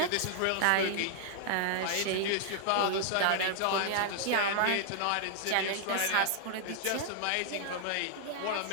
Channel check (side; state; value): both; different; correlation -0.01